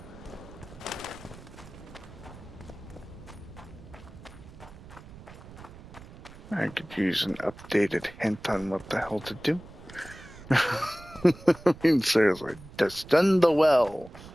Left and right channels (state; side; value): noise; right; rumble, 18 dB below the sound